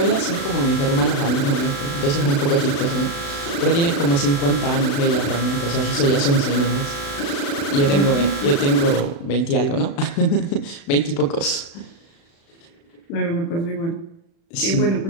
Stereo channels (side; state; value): right; late; 36 ms